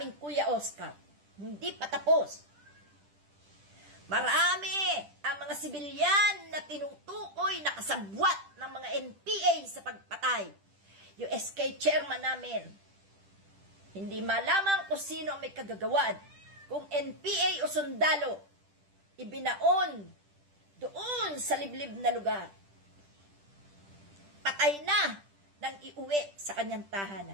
Kuya Oscar. Hindi pa tapos. Marami ang mga sibilyan na tinutukoy na kasabwat ng mga NPA sa pagpatay. Yung SK chairman namin, hindi malaman kung sino ang may kagagawan, kung NPA o sundalo. ibinaon doon sa liblib na lugar. Patay na nang iuwi sa kanyang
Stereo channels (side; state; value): left; late; 10 ms